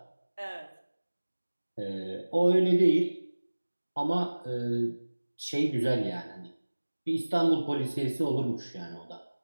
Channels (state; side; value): inverted; both; correlation -1.00